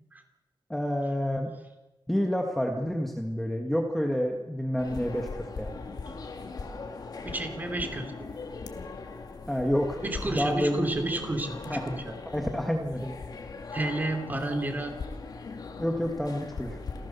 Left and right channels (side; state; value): both; normal; correlation 0.89